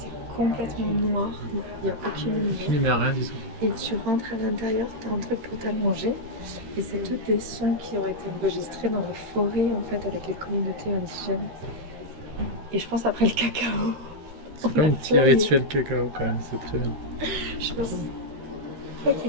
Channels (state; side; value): late; left; 13 ms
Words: complètement noir, il n'y a aucune lumière. Il n'y a rien du tout. Et tu rentres à l'intérieur, tu as un truc pour t'allonger. Et c'est tous des sons qui ont été enregistrés dans la forêt en fait avec les communautés indigènes. Et je pense après le cacao. C'est comme un petit rituel cacao quand même, c'est très bien. Je pense